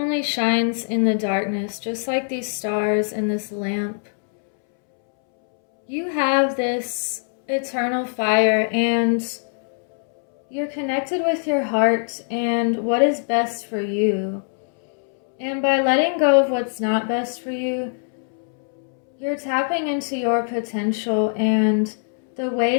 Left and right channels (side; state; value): right; silent; 64 dB below the other